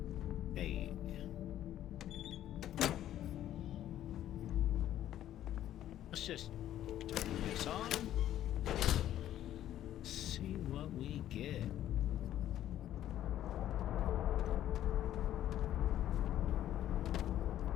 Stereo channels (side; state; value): right; quieter; 12.1 dB